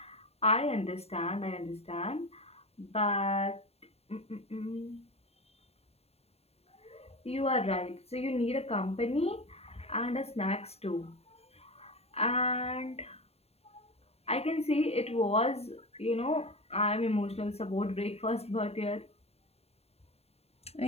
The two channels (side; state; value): right; late; 0.30 ms